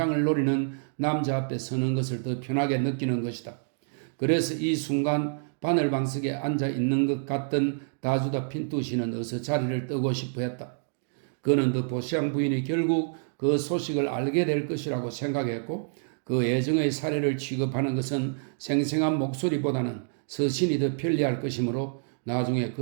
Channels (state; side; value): silent; left; digital silence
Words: 노리는 남자 앞에 서는 것을 더 편하게 느끼는 것이다. 그래서 이 순간 바늘방석에 앉아 있는 것 같던 다주다 핀투 씨는 어서 자리를 뜨고 싶어 했다. 그는 더 보시앙 부인이 결국 그 소식을 알게 될 것이라고 생각했고 그 애정의 사례를 취급하는 것은 생생한 목소리보다는 서신이 더 편리할 것이므로 나중에